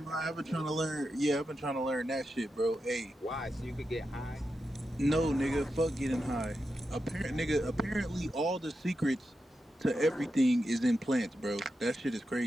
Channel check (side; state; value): both; normal; correlation 0.88